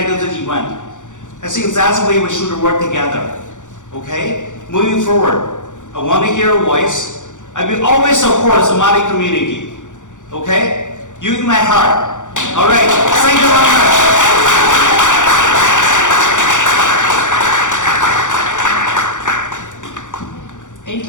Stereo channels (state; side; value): late; right; 0.86 ms